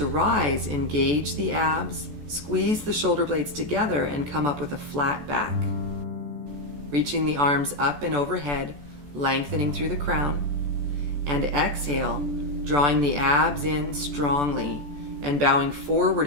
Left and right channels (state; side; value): late; left; 14 ms